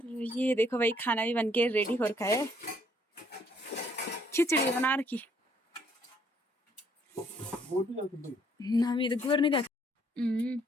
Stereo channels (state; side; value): normal; both; correlation 0.66